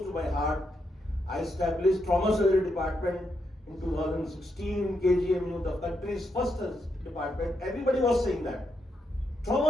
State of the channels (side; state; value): both; normal; correlation 0.81